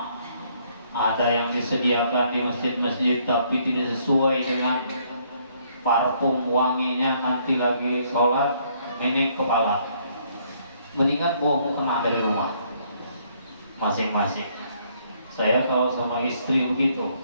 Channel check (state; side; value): inverted; both; correlation -0.67